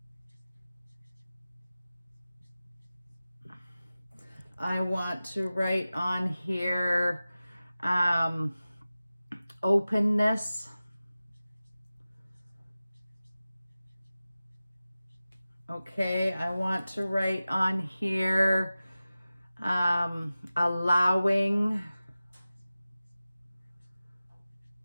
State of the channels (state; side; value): inverted; both; correlation -0.96